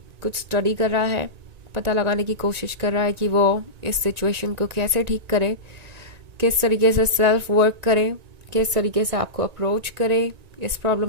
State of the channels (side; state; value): left; late; 1.9 ms